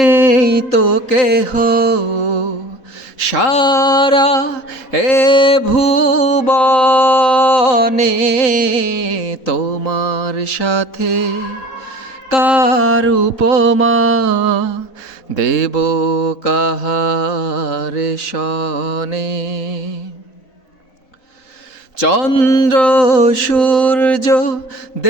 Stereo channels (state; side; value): late; right; 4.1 ms